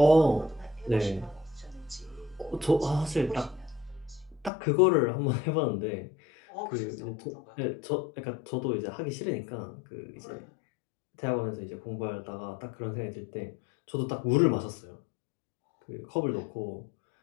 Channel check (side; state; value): right; drops out; at 4.5 s